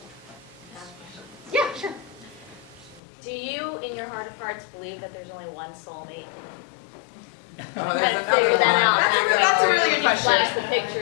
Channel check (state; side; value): drops out; right; at 3.0 s